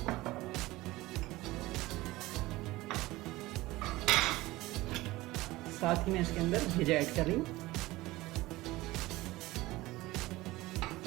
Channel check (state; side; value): quieter; left; 19.0 dB